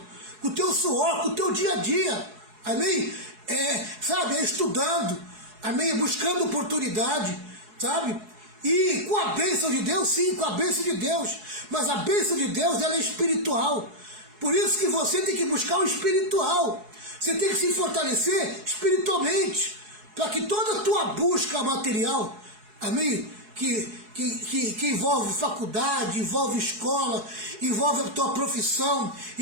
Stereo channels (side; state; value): left; late; 4.7 ms